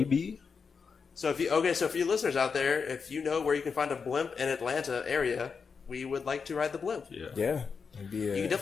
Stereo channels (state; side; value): quieter; right; 5.6 dB